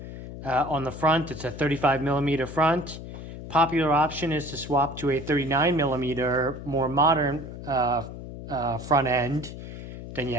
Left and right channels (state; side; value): noise; left; hum, 11 dB below the sound